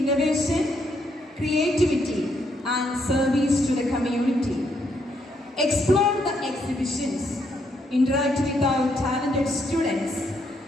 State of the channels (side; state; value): both; normal; correlation 0.74